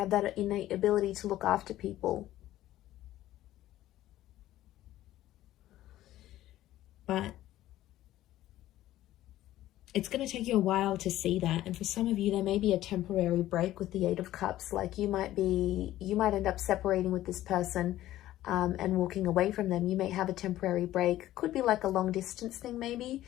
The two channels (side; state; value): right; quieter; 14.4 dB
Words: that innate ability to look after people. But it's going to take you a while to see that. And for some of you, there may be a temporary break with the 8 of Cups. Like you might end up separating with this person and walking away from them. You may have a temporary break. Could be like a long distance thing maybe,